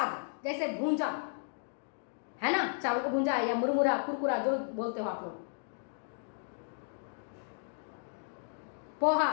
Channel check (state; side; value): silent; right; digital silence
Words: जैसे भूंजा, है ना, चावल को भूंजा या मुरमुरा, कुरकुरा जो बोलते हो आप लोग, पोहा